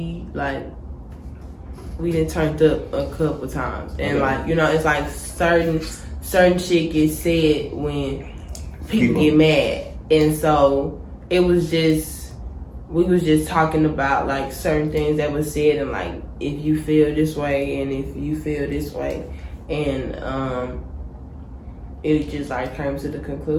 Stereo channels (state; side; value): identical; both; correlation 1.00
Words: we done turned up a couple times, and like it's like certain shit gets said when people get mad, and so it was just we was just talking about like certain things that was said, and like if you feel this way and if you feel this way, and it just like came to the